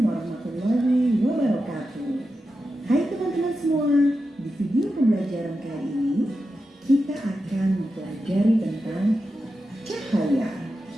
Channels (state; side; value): normal; both; correlation 0.90